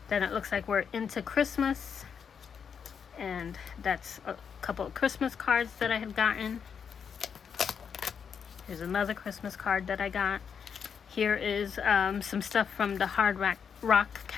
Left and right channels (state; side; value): quieter; right; 6.9 dB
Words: Then it looks like we're into Christmas, and that's a couple of Christmas cards that I had gotten. Here's another Christmas card that I got. Here is some stuff from the Hard Rock